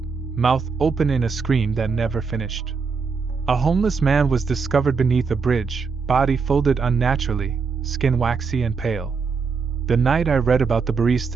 mouth open in a scream that never finished. A homeless man was discovered beneath a bridge, body folded unnaturally, skin waxy and pale. The night I read about the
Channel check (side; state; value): left; quieter; 5.1 dB